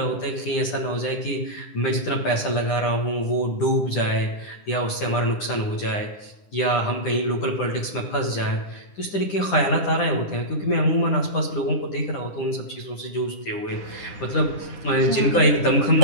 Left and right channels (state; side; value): late; right; 9.9 ms